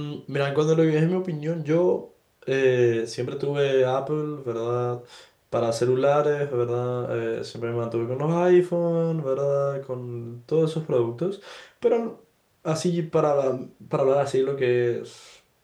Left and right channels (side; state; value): both; identical; correlation 1.00